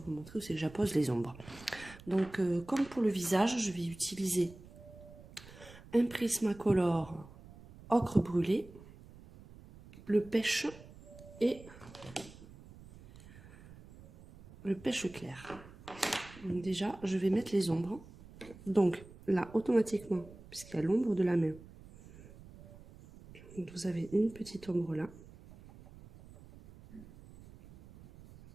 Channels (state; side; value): noise; right; rumble, 19 dB below the sound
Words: vous montrer où c'est que j'appose les ombres. Donc comme pour le visage, je vais utiliser un Prismacolor ocre brûlé, le pêche et le pêche clair. Donc déjà, je vais mettre les ombres. Donc là, automatiquement, puisqu'il y a l'ombre de la main, donc, vous avez une petite ombre là.